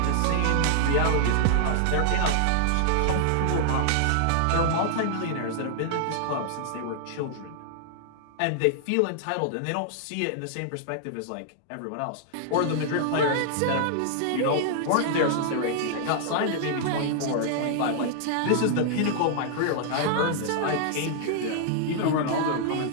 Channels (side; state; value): both; different; correlation -0.01